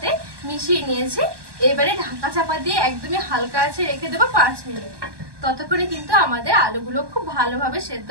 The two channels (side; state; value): left; late; 1.2 ms